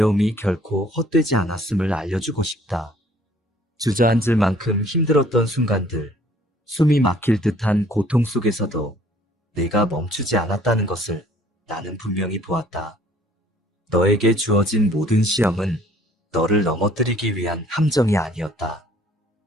결코 헛되지 않았음을 알려주고 싶다. 주저앉을 만큼 힘들었던 순간들, 숨이 막힐 듯한 고통 속에서도 내가 멈추지 않았다는 것을 나는 분명히 보았다. 너에게 주어진 모든 시험은 너를 넘어뜨리기 위한 함정이 아니었다.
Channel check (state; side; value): normal; both; correlation 0.58